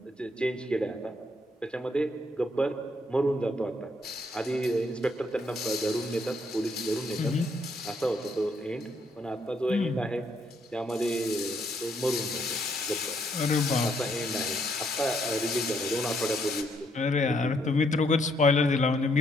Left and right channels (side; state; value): both; normal; correlation 0.72